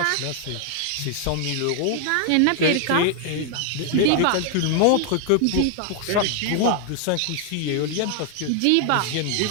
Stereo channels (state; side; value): different; both; correlation 0.00